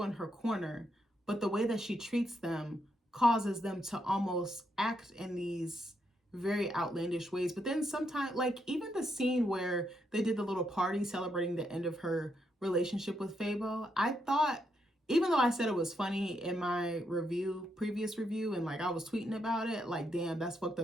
in her corner, but the way that she treats them causes them to almost act in these very outlandish ways. But then sometimes, like even the scene where they did the little party celebrating the end of her relationship with Fabo, I thought, even though I said it was funny in my previous review, and like I was tweeting about it, like, damn, that's fucked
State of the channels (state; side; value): normal; both; correlation 0.79